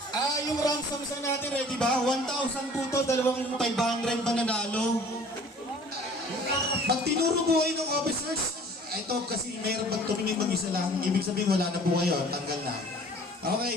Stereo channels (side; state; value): both; normal; correlation 0.49